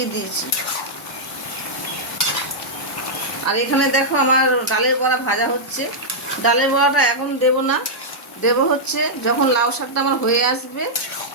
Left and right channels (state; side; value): normal; both; correlation -0.08